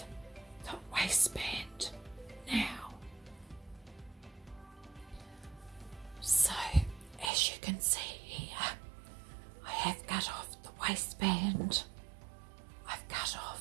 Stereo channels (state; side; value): drops out; left; at 7.3 s